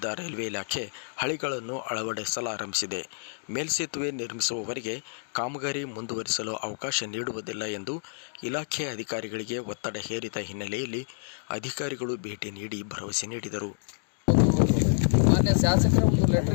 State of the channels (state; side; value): silent; right; digital silence